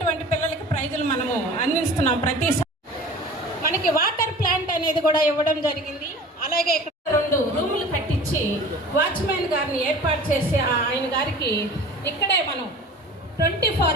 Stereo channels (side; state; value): both; normal; correlation 0.41